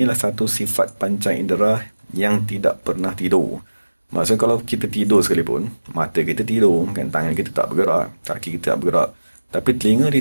adalah satu sifat panca indera yang tidak pernah tidur. Maksudnya kalau kita tidur sekalipun, mata kita tidur, kan, tangan kita tak bergerak, kaki kita tak bergerak, tapi telinga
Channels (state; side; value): inverted; both; correlation -1.00